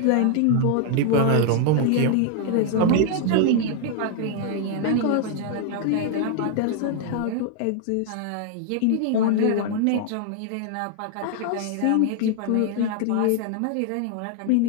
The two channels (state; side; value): different; both; correlation 0.00